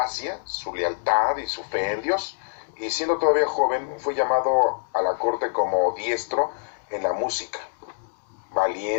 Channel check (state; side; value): silent; right; digital silence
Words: su lealtad y su fe en Dios, y siendo todavía joven fue llamado a la corte como diestro en la música,